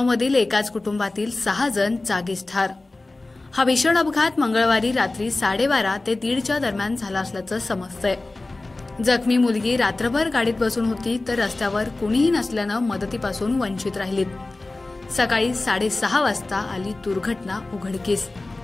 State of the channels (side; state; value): right; quieter; 3.1 dB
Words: एकाच कुटुंबातील 6 जण जागीच ठार। हा भीषण अपघात मंगळवारी रात्री 12:30 ते 1:30च्या दरम्यान झाला असल्याचं समजतंय। जखमी मुलगी रात्रभर गाडीत बसून होती तर रस्त्यावर कुणीही नसल्यानं मदतीपासून वंचित राहिलीत। सकाळी 6:30 वाजता आली दुर्घटना उघडकीस।